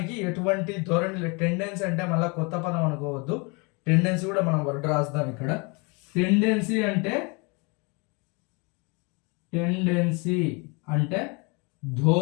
ఎటువంటి ధోరణి. టెండెన్సీ అంటే మళ్ళీ కొత్త పదం అనుకోవద్దు, టెండెన్సీ కూడా మనం వర్డ్ రాస్తాం ఇక్కడ. టెండెన్సీ అంటే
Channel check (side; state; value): right; quieter; 30.4 dB